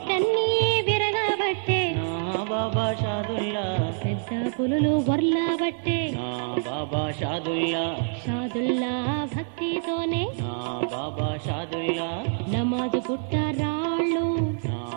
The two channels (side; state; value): left; silent; 61 dB below the other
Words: విరగబట్టే నా బాబా షాదుల్లా పెద్ద పులులు వర్లాబట్టే నా బాబా షాదుల్లా షాదుల్లా భక్తితోనే నా బాబా షాదుల్లా నమాజు పుట్ట రాళ్ళు నా